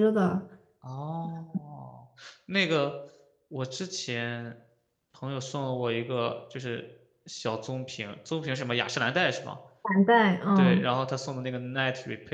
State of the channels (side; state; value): both; identical; correlation 1.00